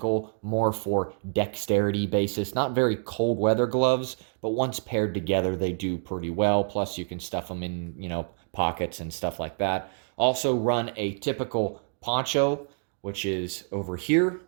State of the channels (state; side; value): silent; left; 60 dB below the other